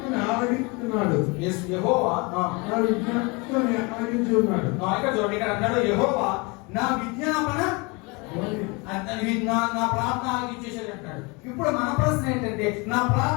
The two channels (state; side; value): quieter; right; 28.2 dB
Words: ఆలకిస్తున్నాడు. యెహోవా నా విజ్ఞప్తిని ఆలకించున్నాడు. ఇక్కడ చూడండి, ఇక్కడ అన్నాడు యెహోవా నా విజ్ఞాపన నా ప్రార్థన ఆలకించేసాడు అంటాడు. ఇప్పుడు మన ప్రశ్న ఏంటంటే నా